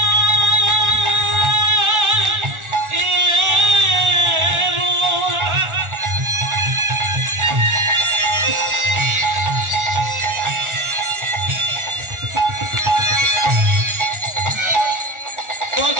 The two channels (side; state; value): left; late; 1.4 ms